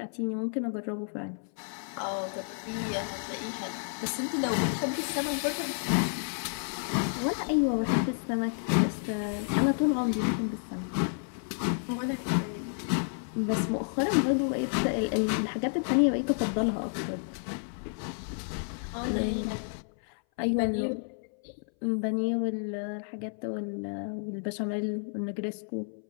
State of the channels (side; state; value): right; silent; 57 dB below the other